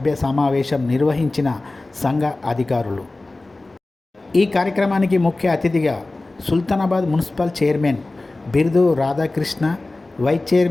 సమావేశం నిర్వహించిన సంఘ అధికారులు. ఈ కార్యక్రమానికి ముఖ్య అతిథిగా Sultanabad municipal chairman Birdu Radhakrishna, vice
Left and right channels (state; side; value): quieter; right; 3.0 dB